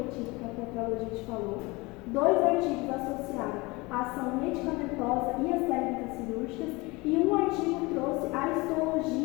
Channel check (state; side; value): quieter; right; 24.0 dB